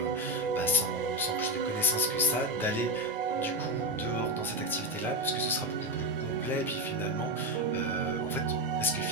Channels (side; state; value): both; normal; correlation 0.12